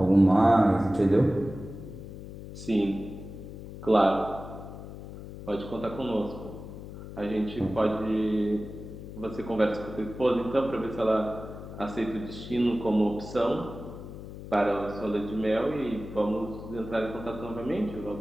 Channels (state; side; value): noise; left; hum, 12 dB below the sound